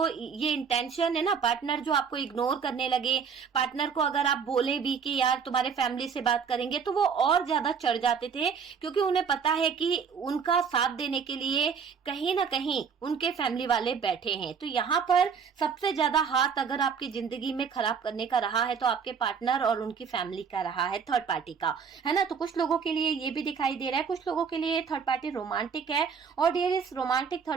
ये इंटेंशन है ना, पार्टनर जो आपको इग्नोर करने लगे, पार्टनर को अगर आप बोले भी कि यार तुम्हारे फैमिली से बात करेंगे तो वो और ज्यादा चढ़ जाते थे, क्योंकि उन्हें पता है कि उनका साथ देने के लिए कहीं ना कहीं उनके फैमिली वाले बैठे हैं। तो यहाँ पर सबसे ज्यादा हाथ अगर आपकी जिंदगी में खराब करने का रहा है तो आपके पार्टनर और उनकी फैमिली का रहा है, थर्ड पार्टी का, है ना। तो कुछ लोगों के लिए ये भी दिखाई दे रहा है, कुछ लोगों के लिए थर्ड पार्टी रोमांटिक है। और डियर इस रोमांटिक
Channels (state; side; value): quieter; left; 6.4 dB